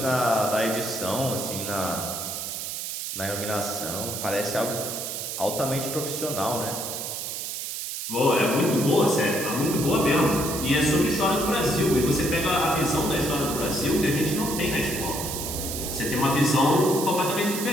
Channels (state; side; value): noise; right; hiss, 5 dB below the sound